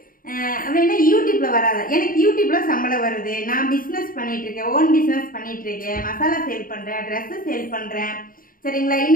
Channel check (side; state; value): right; late; 0.41 ms